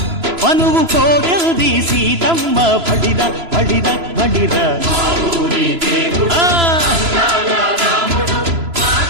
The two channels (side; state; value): left; late; 3.0 ms